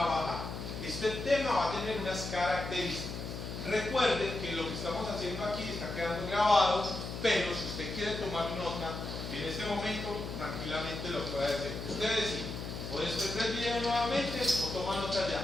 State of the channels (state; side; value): noise; left; hum, 7 dB below the sound